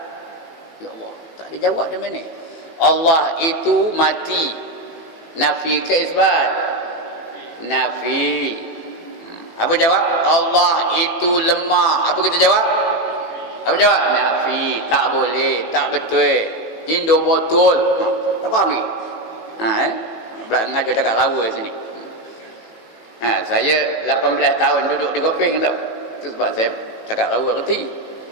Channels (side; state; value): right; late; 18 ms